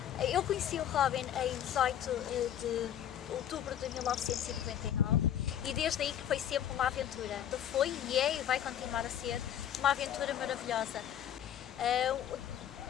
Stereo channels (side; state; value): right; quieter; 10.3 dB